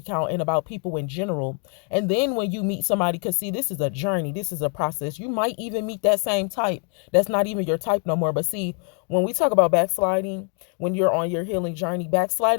count and about people in general. And then when you meet somebody, because see, this is a journey, this is a process. You might even meet that same type that's not even your type no more. But see, when we talk about backsliding, when you're on your healing journey,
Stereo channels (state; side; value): quieter; right; 39.8 dB